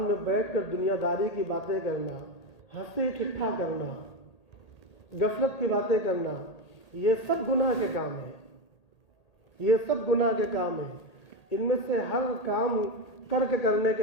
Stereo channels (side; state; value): right; late; 1.8 ms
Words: بیٹھ کر دنیا داری کی باتیں کرنا، ہنسی ٹھٹھا کرنا، غفلت کی باتیں کرنا، یہ سب گناہ کے کام ہیں۔ یہ سب گناہ کے کام ہیں۔ ان میں سے ہر کام ترک کرنے